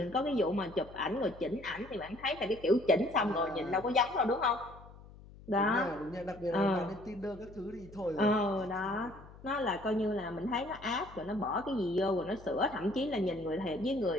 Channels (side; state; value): left; noise; hum, 19 dB below the sound